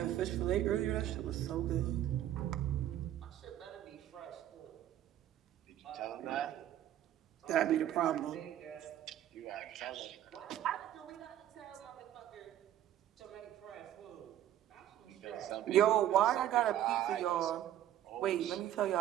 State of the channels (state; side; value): quieter; left; 11.9 dB